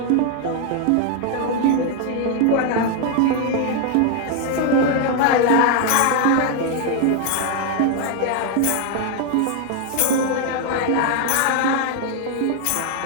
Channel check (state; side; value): different; both; correlation 0.01